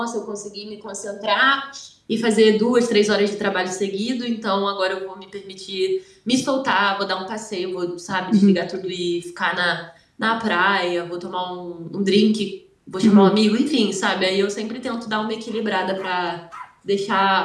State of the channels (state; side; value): identical; both; correlation 1.00